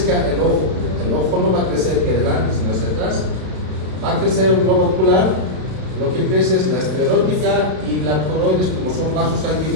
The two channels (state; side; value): late; left; 32 ms